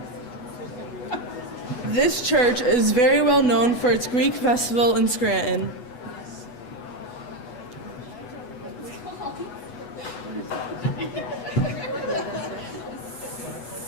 This church is very well known for its Greek festival in Scranton.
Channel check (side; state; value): right; late; 8.1 ms